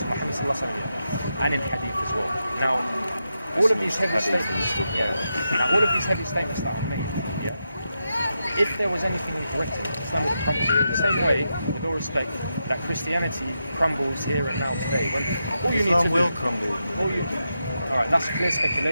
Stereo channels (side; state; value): both; inverted; correlation -0.87